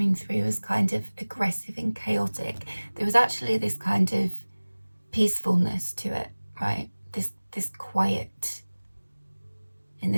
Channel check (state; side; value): inverted; both; correlation -1.00